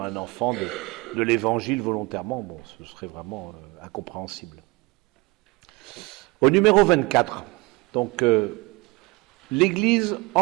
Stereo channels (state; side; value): quieter; left; 24.6 dB